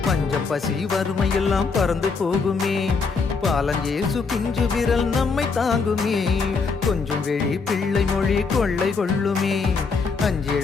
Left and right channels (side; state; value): right; quieter; 4.8 dB